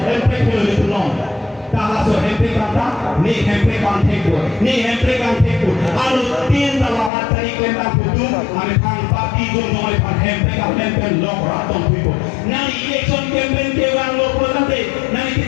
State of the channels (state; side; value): drops out; right; at 7.1 s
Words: itu long. Kalau so hempek kata ni hempek kan tekul, ni hempek kan tekul. Alu tin dalam cari kelihatan putu, ane pang pati tu nolai pan hempek long ratong puipo. Nani election campaign kewan lo puluh nani